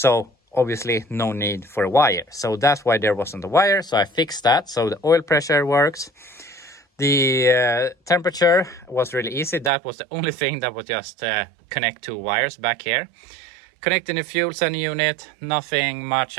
obviously no need for a wire. So that's why there wasn't a wire. So I fixed that. So the oil pressure works. The temperature was really easy. That was the only thing that would just connect two wires back here. Connecting the fuel sending unit, nothing much.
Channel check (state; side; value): drops out; left; at 9.7 s